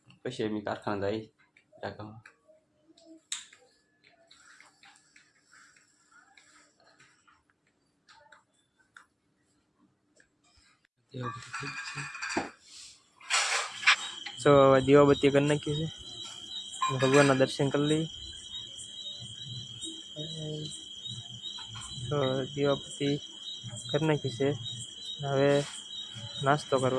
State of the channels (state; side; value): identical; both; correlation 1.00